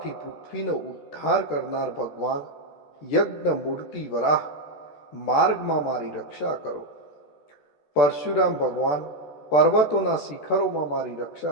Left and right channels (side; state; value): right; late; 14 ms